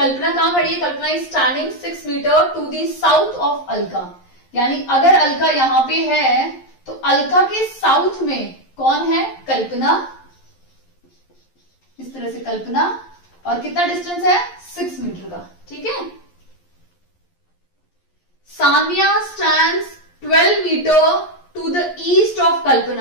कहां खड़ी है? Kalpana is standing 6 metre to the south of Alka, यानी अगर अलका यहां पे है तो अलका के साउथ में कौन है? कल्पना। इस तरह से कल्पना, और कितना डिस्टेंस है? 6 मीटर का, ठीक है। Sania stands 12 metre to the east of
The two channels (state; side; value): late; right; 11 ms